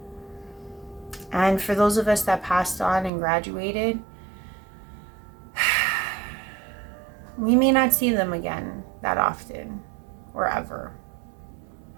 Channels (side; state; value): left; drops out; at 3.1 s